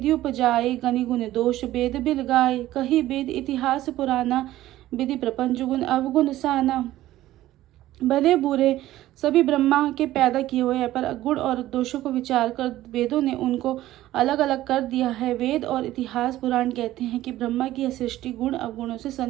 उपजाए, गनि गुण दोष वेद बिल गाए। कही वेद इतिहास पुराना, विधि प्रपंच गुण अवगुण साना। भले बुरे सभी ब्रह्मा के पैदा किए हुए हैं, पर गुण और दोषों को विचार कर वेदों ने उनको अलग अलग कर दिया है। वेद और इतिहास पुराण कहते हैं कि ब्रह्मा की यह सृष्टि गुण अवगुणों से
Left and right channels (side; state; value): left; quieter; 14.9 dB